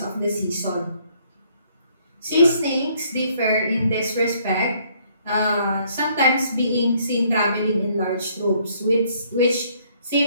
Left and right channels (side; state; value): both; inverted; correlation -0.65